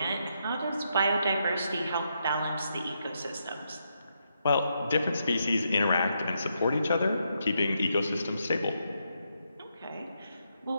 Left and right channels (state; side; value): inverted; both; correlation -0.80